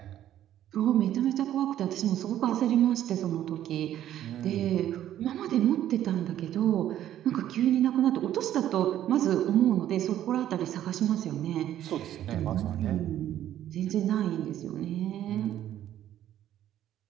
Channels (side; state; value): left; quieter; 11.8 dB